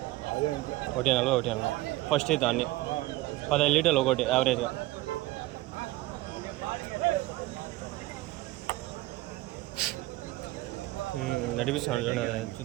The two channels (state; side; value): quieter; left; 18.5 dB